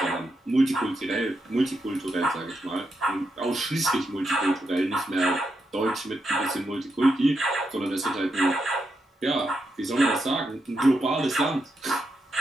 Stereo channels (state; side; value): normal; both; correlation 0.84